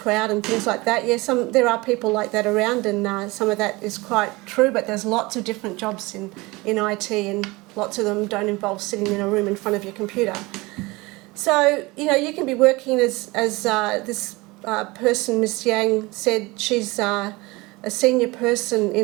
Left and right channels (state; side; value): quieter; left; 22.9 dB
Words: and things like that. Yeah, there are people like that around, and some of that is quite true, but there's lots of different jobs in IT, and lots of them don't involve sitting in a room in front of your computer. So, you can be working as this person, Ms. Yang, said. She's a senior person